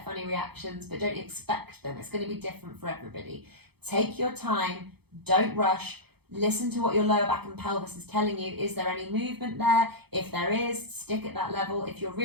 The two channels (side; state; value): left; late; 0.97 ms